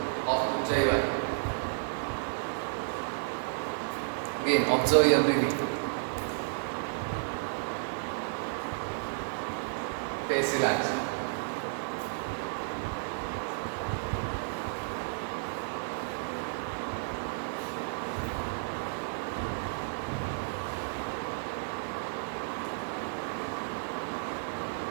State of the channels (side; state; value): left; silent; digital silence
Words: of Ujjayi. Again, observe your breathing. Face relaxed.